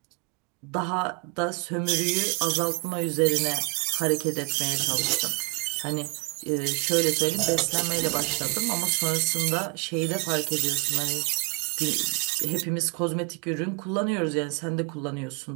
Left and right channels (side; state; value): left; quieter; 30.0 dB